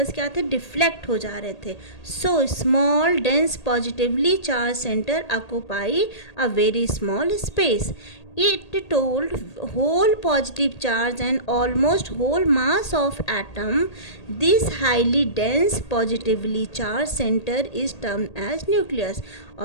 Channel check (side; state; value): right; late; 1.8 ms